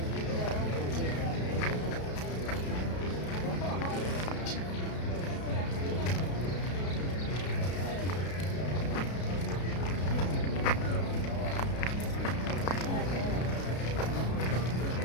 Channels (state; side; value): late; right; 33 ms